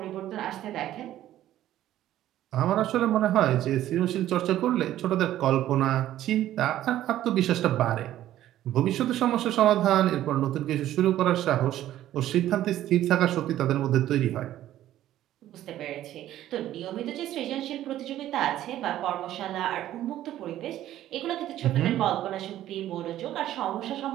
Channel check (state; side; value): quieter; left; 13.0 dB